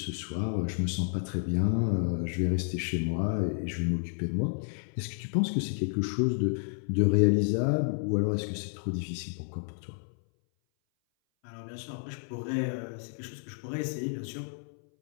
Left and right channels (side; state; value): right; silent; 57 dB below the other